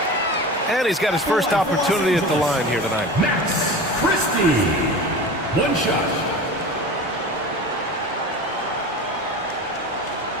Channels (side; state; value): both; normal; correlation 0.32